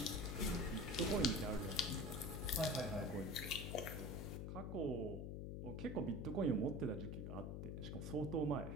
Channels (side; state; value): left; noise; hum, 4 dB below the sound